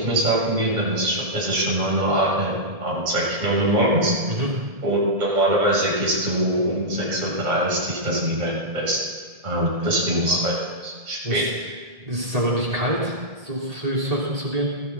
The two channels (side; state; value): left; late; 1.7 ms